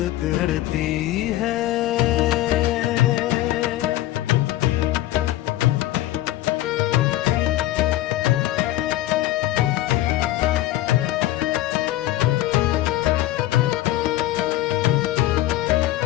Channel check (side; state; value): right; quieter; 15.3 dB